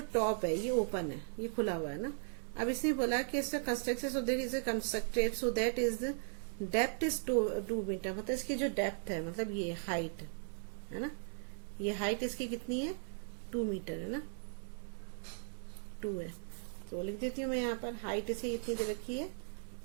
टॉप है ये ओपन है, ये खुला हुआ है ना। अब इसने बोला कि इसका construction so there is a constructed so that is depth is 2 metre, मतलब इसकी जो डेप्थ है, मतलब ये हाइट है ना, ये हाइट इसकी कितनी है 2 मीटर है ना, 2 है। तो लिख देती हूँ मैं यहाँ पर, हाइट इसे इतनी दे रखी है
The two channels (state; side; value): silent; left; digital silence